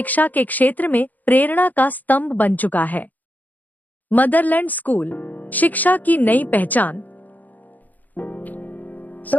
के क्षेत्र में प्रेरणा का स्तंभ बन चुका है। मदरलैंड स्कूल, शिक्षा की नई पहचान।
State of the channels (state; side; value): late; right; 0.082 ms